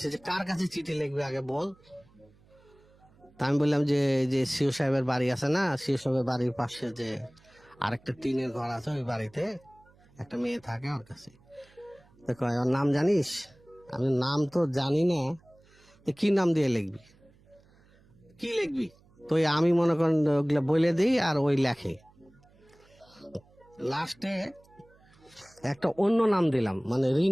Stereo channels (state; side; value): noise; right; hum, 29 dB below the sound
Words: যে কার কাছে চিঠি লিখবে আগে বল। তা আমি বললাম যে যে সিও সাহেবের বাড়ি আছে না, সিও সাহেবের বাড়ির পাশে যে আরেকটা টিনের ঘর আছে, ওই বাড়িতে একটা মেয়ে থাকে, ওর কাছে। তো কয় ওর নাম জানিস? আমি নাম তো জানি না। তো কি নাম দিয়ে লিখবি? কি লিখবি? তো ওই আমি মনে করেন ওগুলা বলে দিই, আর ওই লেখে। লাস্টে একটা অন্য নাম দিলাম, মানে